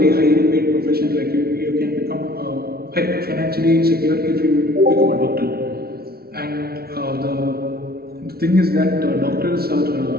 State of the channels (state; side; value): late; left; 0.45 ms